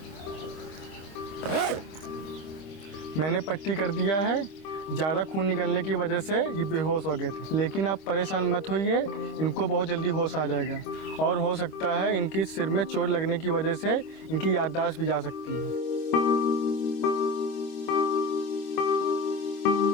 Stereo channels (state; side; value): late; right; 25 ms